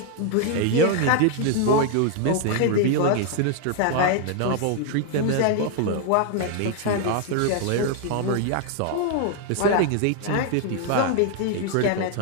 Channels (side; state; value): both; different; correlation 0.00